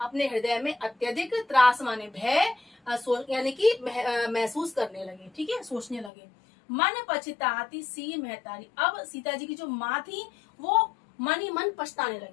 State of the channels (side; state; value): right; drops out; at 6.1 s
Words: अत्यधिक त्रास माने भय, यानी कि महसूस करने लगे। ठीक है, सोचने लगे। मन पछताती सी महतारी। अब सीता जी की जो माँ थी वो मन ही मन पछताने